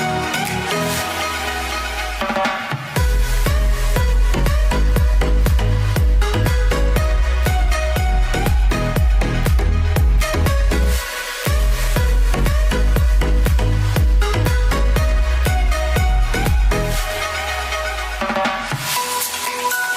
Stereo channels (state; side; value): identical; both; correlation 1.00